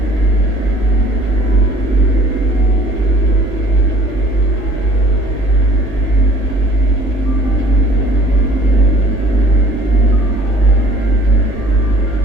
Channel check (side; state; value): right; late; 1.6 ms